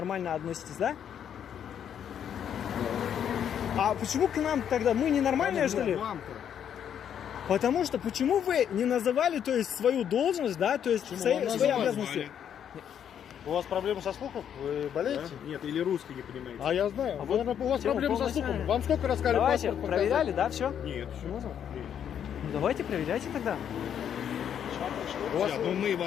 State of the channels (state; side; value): quieter; right; 9.0 dB